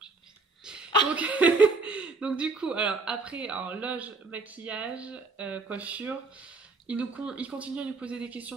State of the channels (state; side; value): quieter; left; 3.7 dB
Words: Donc du coup, alors après, loge, maquillage, coiffure, il continue à nous poser des